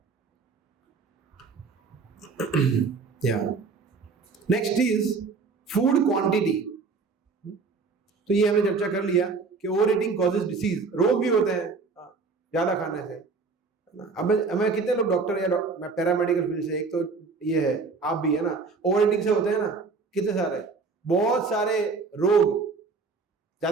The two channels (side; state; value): left; quieter; 4.5 dB